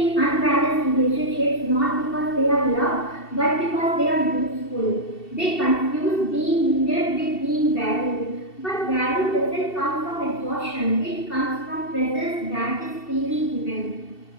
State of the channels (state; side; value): late; right; 2.7 ms